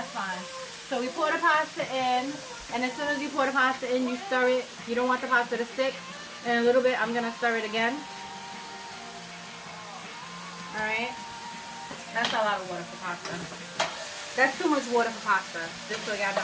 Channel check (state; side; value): identical; both; correlation 1.00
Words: fine. So we pour the pasta in, and as soon as you pour the pasta in, you stir it. You don't want the pasta to stick. In a little bit, I'm going to stir it again. Alright. That's a lot of water for pasta. That's too much water for pasta. Just so y'all